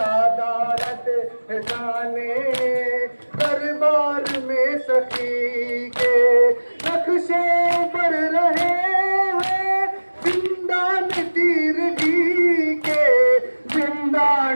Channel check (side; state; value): both; inverted; correlation -1.00